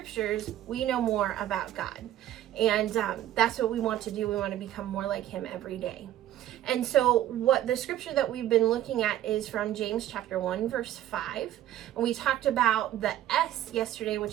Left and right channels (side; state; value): left; quieter; 12.7 dB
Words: we know more about God. And that's what we want to do. We want to become more like Him every day. And so what the scripture that we've been looking at is from James chapter 1, verse 5. And we talked about the S yesterday,